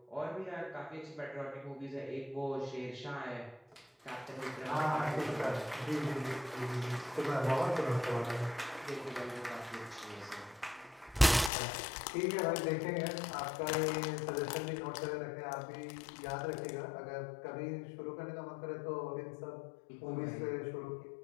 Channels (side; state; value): right; drops out; at 11.5 s